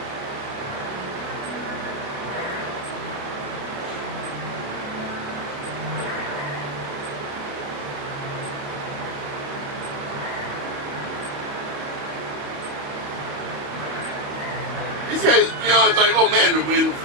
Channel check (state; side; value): late; left; 28 ms